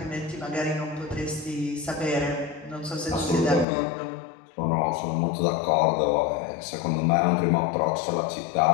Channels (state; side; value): drops out; right; at 3.7 s